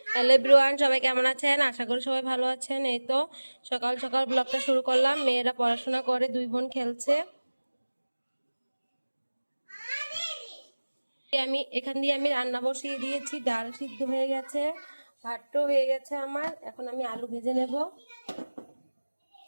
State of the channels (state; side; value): inverted; both; correlation -1.00